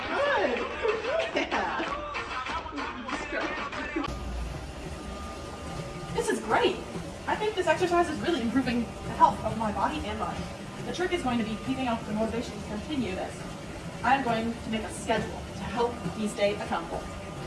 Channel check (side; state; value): both; identical; correlation 1.00